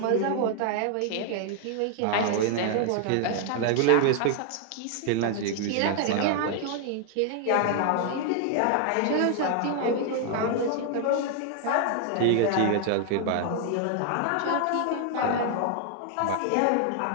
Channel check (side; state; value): both; different; correlation 0.00